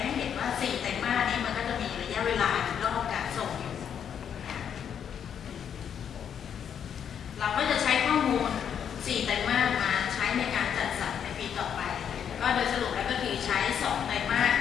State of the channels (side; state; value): right; quieter; 8.3 dB